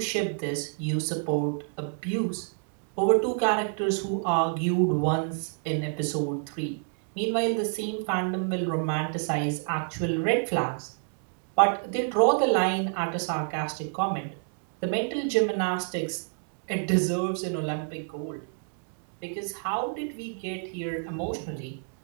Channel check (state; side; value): silent; left; 59 dB below the other